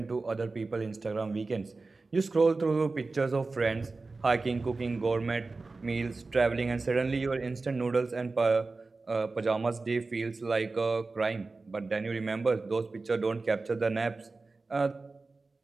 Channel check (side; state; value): left; quieter; 3.7 dB